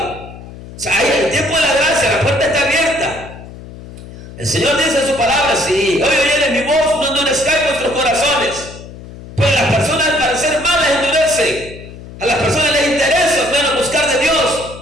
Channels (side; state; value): left; noise; hum, 15 dB below the sound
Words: O sea, ahí en el tiempo de la gracia, la puerta está abierta. El Señor dice en su palabra: si hoy oyeres mi voz, no endurezcáis vuestros corazones. Pues las personas, al parecer malas, endurecen. A las personas les interesa menos buscar de Dios.